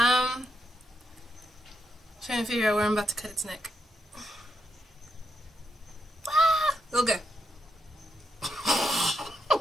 Trying to figure out where I'm about to cut its neck. Ah, okay.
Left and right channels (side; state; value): both; normal; correlation 0.81